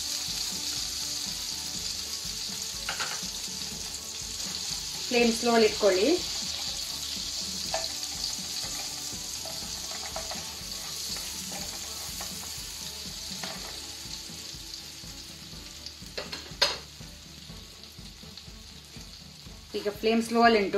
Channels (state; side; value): identical; both; correlation 1.00